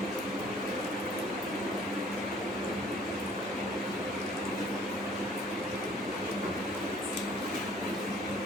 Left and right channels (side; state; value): both; normal; correlation 0.55